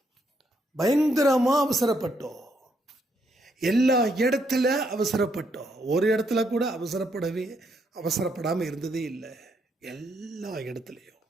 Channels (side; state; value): both; normal; correlation 0.75